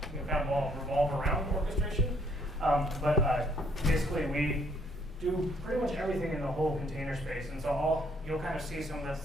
kind of revolve around orchestration. But basically, we do pretty much everything in the whole container space, and so you'll kind of see some of the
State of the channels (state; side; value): normal; both; correlation 0.66